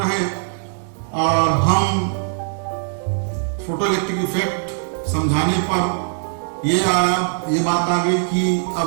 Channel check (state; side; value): silent; left; digital silence